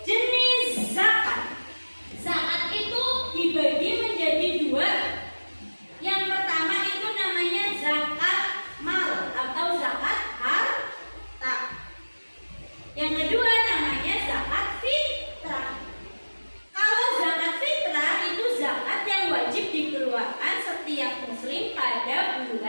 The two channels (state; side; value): inverted; both; correlation -1.00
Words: Jenis zakat. Zakat itu dibagi menjadi dua. Yang pertama itu namanya zakat mal atau zakat harta. Yang kedua namanya zakat fitrah. Kalau zakat fitrah itu zakat yang wajib dikeluarkan setiap muslim pada